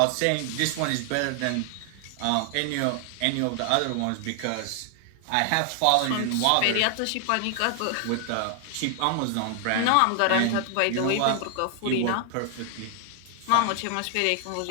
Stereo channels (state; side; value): different; both; correlation 0.00